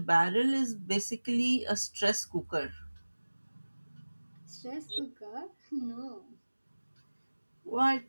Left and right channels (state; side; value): inverted; both; correlation -1.00